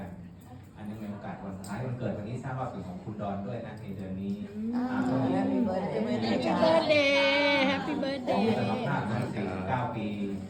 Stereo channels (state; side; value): identical; both; correlation 1.00